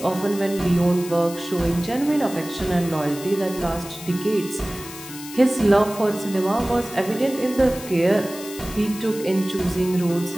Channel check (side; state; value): left; noise; hiss, 14 dB below the sound